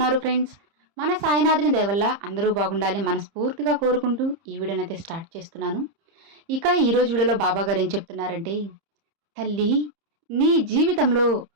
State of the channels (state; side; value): late; left; 30 ms